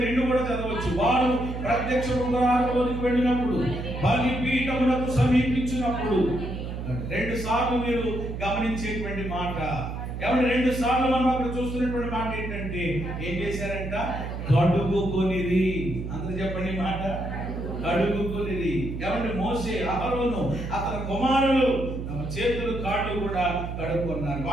కూడా చదవచ్చు. వారు ప్రత్యక్ష గుడారములోనికి వెళ్ళినప్పుడు, బలిపీఠమునకు సమీపించినప్పుడు, 2 సార్లు మీరు గమనించేటువంటి మాట. ఏమంటే 2 సార్లు మనం అక్కడ చూస్తున్నటువంటి మాట ఏంటంటే ఏం చేశారంట? కడుగుకొనిరి. అందరూ చెప్పండి మాట, కడుగుకొనిరి. ఏమంటే మోసే, అహరోను, అతని కుమారులు తమ చేతులు కాళ్ళు కూడా కడుక్కున్నారు.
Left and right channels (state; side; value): noise; right; hum, 6 dB below the sound